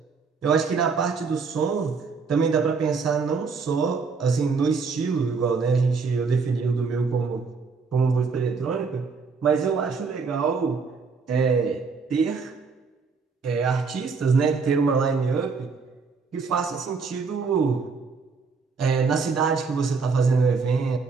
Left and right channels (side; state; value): left; quieter; 4.9 dB